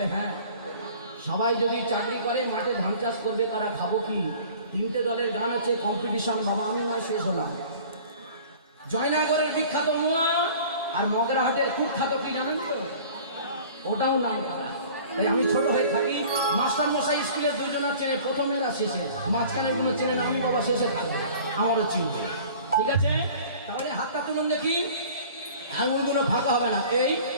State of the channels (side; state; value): both; inverted; correlation -0.46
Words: হ্যাঁ, সবাই যদি চাকরি করে মাঠে ধান চাষ করবে, তারা খাবো কি? তিনটে দলের গান আছে, কম্পিটিশন। বাবা আমি নয়, শেষ হলাম। জয়নগরের বিখ্যাত মোয়া আর মগরাহাটের কুখ্যাত কি জানেন তো? ওটাও নাম করা। তাই আমি ছোট হয়ে থাকি, মাস্টার মশাই স্কুলের দুজনের চেনে, প্রথমেরা শেষে, মাঝখানের গুলো চেনে না। আমি বাবা শেষে থাকবো, আমারও চিনবে। ঠিক আছে, তাহলে হাতটা তুলুন দেখি, আঙুলগুলো ফাঁকা হবে না। এই